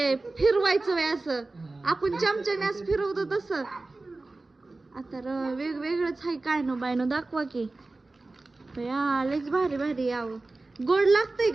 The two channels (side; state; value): left; quieter; 3.3 dB